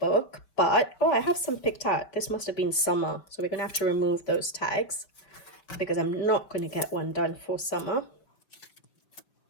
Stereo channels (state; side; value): late; right; 5.1 ms